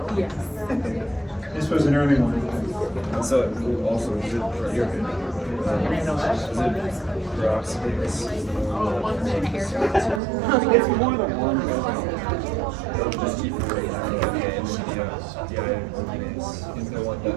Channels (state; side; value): drops out; left; at 10.2 s